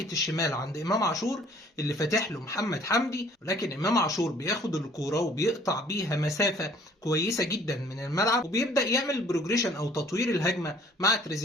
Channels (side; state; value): both; normal; correlation 0.57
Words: الشمال عند إمام عاشور اللي فاتح له محمد حمدي، ولكن إمام عاشور بياخد الكرة وبيقطع بيها مسافة كويسة جدا من الملعب، وبيبدأ يعمل بروجريشن أو تطوير الهجمة مع